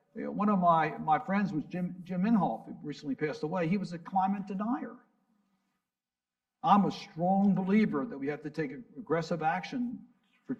One of my friends was Jim Inhofe, who recently passed away. He was a climate denier. I'm a strong believer that we have to take aggressive action to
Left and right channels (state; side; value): identical; both; correlation 1.00